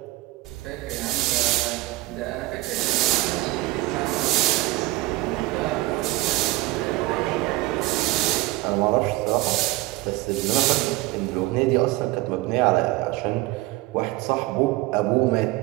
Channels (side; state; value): left; quieter; 19.2 dB